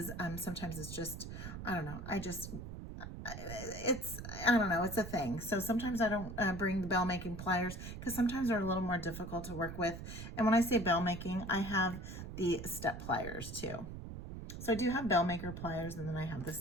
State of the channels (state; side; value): noise; right; rumble, 9 dB below the sound